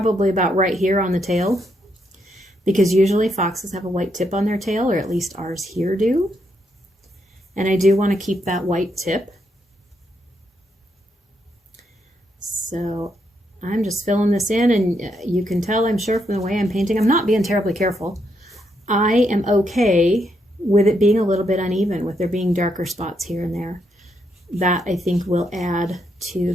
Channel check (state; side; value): normal; both; correlation 0.78